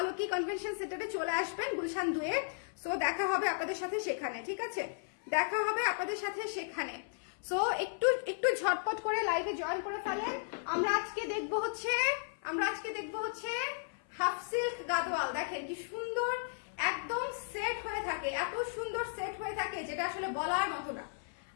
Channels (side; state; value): right; silent; 54 dB below the other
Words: কনভেনশন সেন্টারে চলে আসবেন গুলশান 2-এ। সো দেখা হবে আপনাদের সাথে সেখানে, ঠিক আছে, দেখা হবে আপনাদের সাথে সেখানে। সো একটু একটু ঝটপট করে লাইভে জয়েন করে ফেলেন। আমরা আজকে দেখবো হচ্ছে হাফ সিল্ক গাদোয়াল। দেখেন কি সুন্দর, একদম সেট হয়ে থাকে, এত সুন্দর সেট হয়ে থাকে যেটা আসলে বলার মতো না।